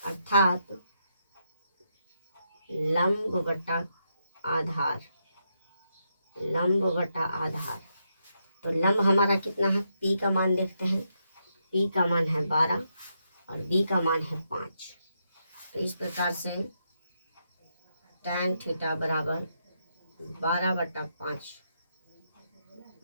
अर्थात लंब बटा आधार। लंब बटा आधार। तो लंब हमारा कितना है? P का मान देखते हैं। P का मान है 12 और B का मान है 5। तो इस प्रकार से टैन थीटा बराबर 12/5।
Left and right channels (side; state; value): both; inverted; correlation -0.80